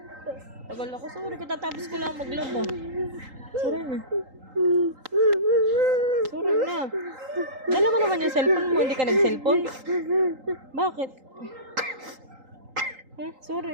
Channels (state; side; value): late; left; 3.8 ms